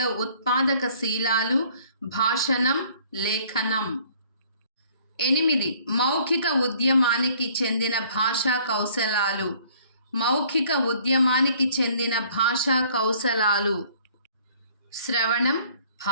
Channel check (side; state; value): both; inverted; correlation -0.57